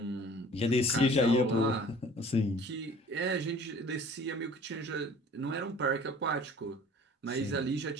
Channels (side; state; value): both; normal; correlation 0.48